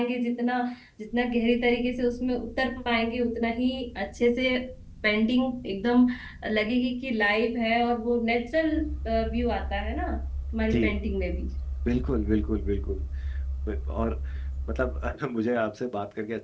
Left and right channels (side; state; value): both; identical; correlation 1.00